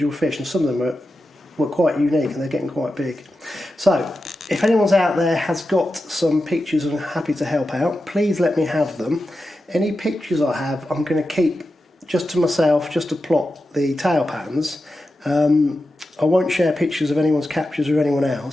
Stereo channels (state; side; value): normal; both; correlation 0.91